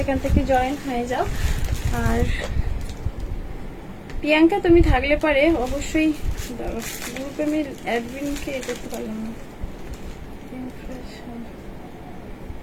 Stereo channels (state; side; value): identical; both; correlation 1.00